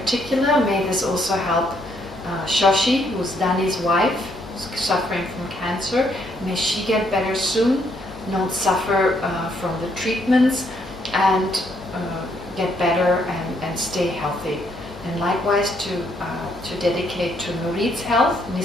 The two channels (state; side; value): normal; both; correlation 0.71